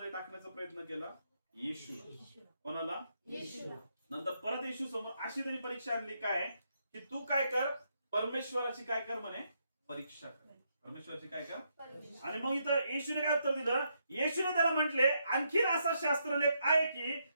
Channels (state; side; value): inverted; both; correlation -0.78